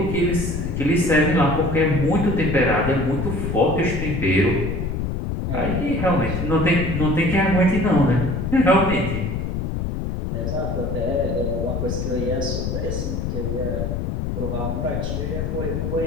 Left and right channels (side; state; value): left; noise; rumble, 2 dB below the sound